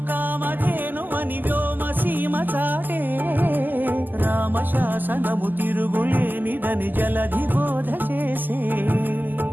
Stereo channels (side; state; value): left; late; 0.088 ms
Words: కామధేను అని వ్యోమ సీమ చాటే రామశాసనము తిరుగులేనిదని జలధి బోధ చేసే